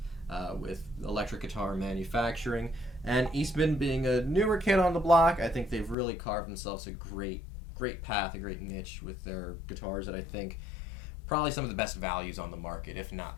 with electric guitar manufacturing. And Eastman being a newer kid on the block, I think they've really carved themselves a great path, a great niche with their guitars that I think probably some of the best values on the market, if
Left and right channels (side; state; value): right; drops out; at 6.0 s